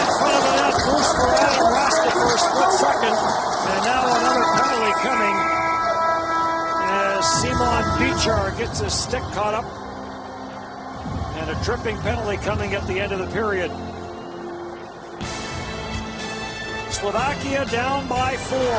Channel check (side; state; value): both; identical; correlation 1.00